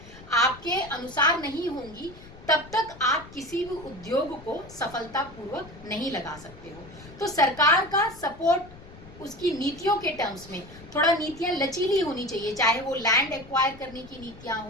आपके अनुसार नहीं होंगी, तब तक आप किसी भी उद्योग को सफलतापूर्वक नहीं लगा सकते हो। तो सरकार का सपोर्ट उसकी नीतियों के टर्म्स में थोड़ा नीतियां लचीली होनी चाहिए, चाहे वो लैंड एक्वायर करने की नीतियां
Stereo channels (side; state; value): left; noise; rumble, 19 dB below the sound